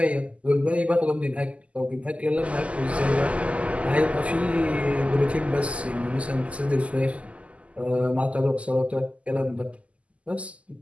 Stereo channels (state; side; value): late; left; 0.064 ms